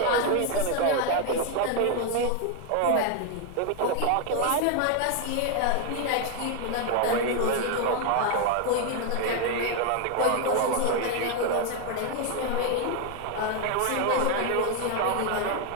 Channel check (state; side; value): different; both; correlation 0.01